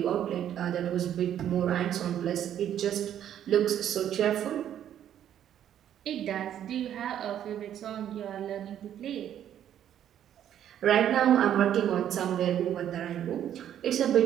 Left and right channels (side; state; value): left; quieter; 10.4 dB